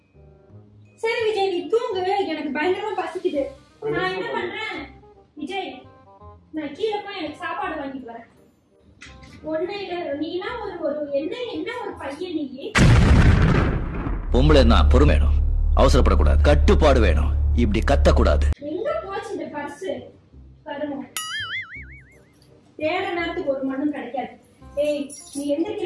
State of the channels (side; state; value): both; identical; correlation 1.00